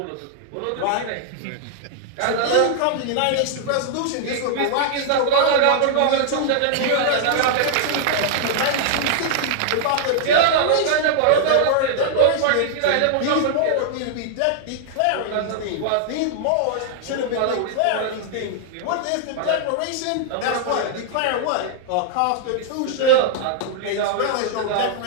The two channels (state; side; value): different; both; correlation -0.01